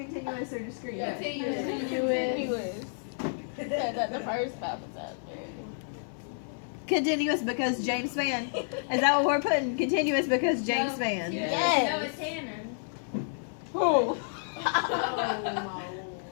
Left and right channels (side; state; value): right; silent; digital silence